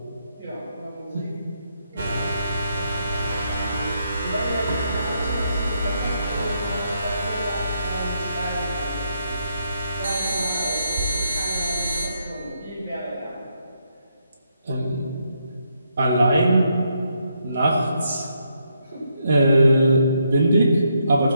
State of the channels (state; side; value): inverted; both; correlation -0.78